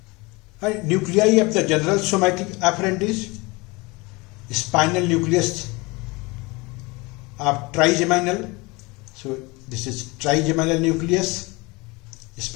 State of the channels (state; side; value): quieter; right; 25.2 dB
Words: And nuclei of the general somatic afferent is spinal nucleus of trigeminal. So this is trigeminal nucleus,